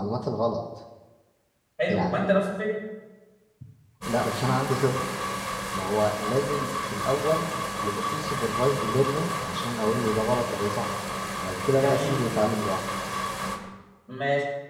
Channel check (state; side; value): identical; both; correlation 1.00